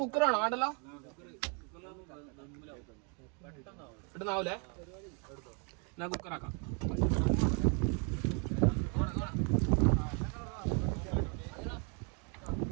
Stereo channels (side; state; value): left; quieter; 36.6 dB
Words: കുക്കറാണോ? ആണ്ടല്ലോ, ഇടുന്നാവൂലേ? എന്നാ കുക്കറാക്കാം.